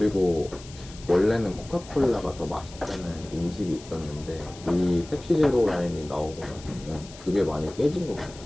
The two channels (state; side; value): noise; left; hiss, 19 dB below the sound